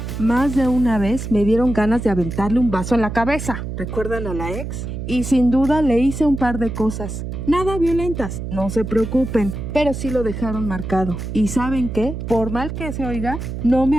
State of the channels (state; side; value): noise; right; hum, 6 dB below the sound